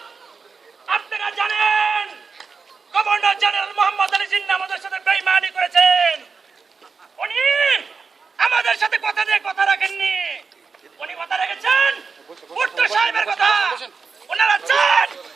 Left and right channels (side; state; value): left; quieter; 5.0 dB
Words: আপনারা জানেন গভর্নর জেনারেল মোহাম্মদ আলী জিন্নাহ আমাদের সাথে বেঈমানি করেছেন। উনি আমাদের সাথে কথা দিয়ে কথা রাখেননি। উনি কথা রেখেছেন ভুট্টো সাহেবের কথা। ওনারা চান